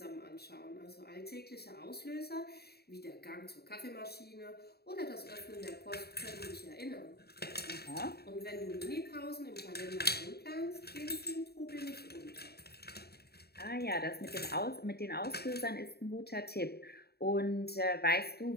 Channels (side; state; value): right; late; 0.46 ms